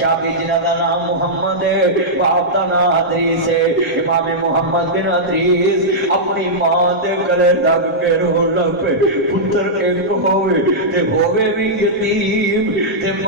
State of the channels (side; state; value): both; normal; correlation -0.11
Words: جنہ دا نام محمد ہے باپ دا نام ادریس ہے امام محمد بن ادریس اپنی ماں دے گلے لگ کے رون لگ پے پتر ایک ہوئے بھی یتیم تے